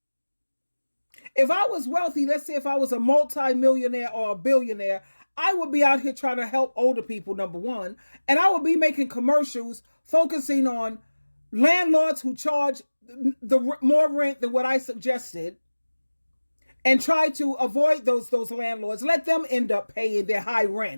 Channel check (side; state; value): both; inverted; correlation -1.00